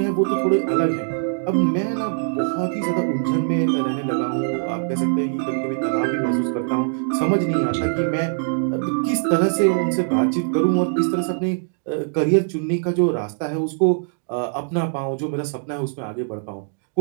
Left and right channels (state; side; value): silent; left; digital silence